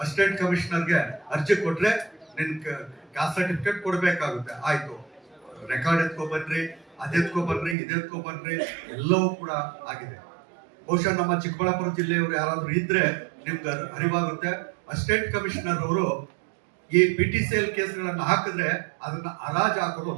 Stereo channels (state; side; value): drops out; left; at 7.8 s